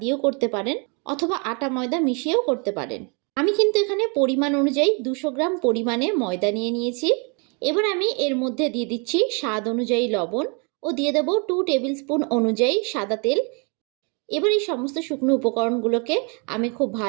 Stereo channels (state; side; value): quieter; left; 34.5 dB